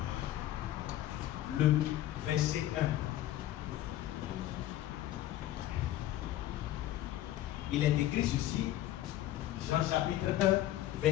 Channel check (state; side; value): quieter; right; 13.8 dB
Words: le verset 1. Il est écrit ceci, Jean chapitre 1,